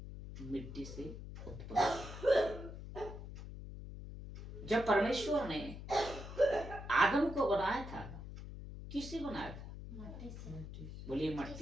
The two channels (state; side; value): noise; left; hum, 10 dB below the sound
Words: मिट्टी से उत्पन्न। जब परमेश्वर ने आदम को बनाया था, किससे बनाया था? मट्टी से। बोलिए